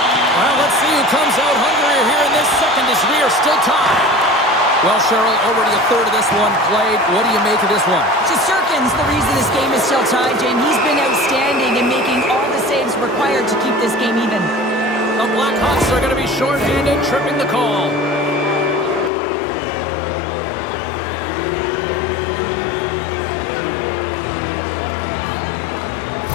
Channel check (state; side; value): drops out; right; at 19.1 s